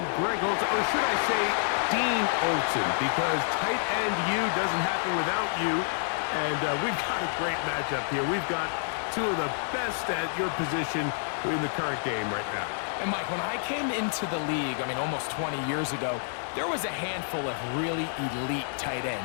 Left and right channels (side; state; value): right; silent; digital silence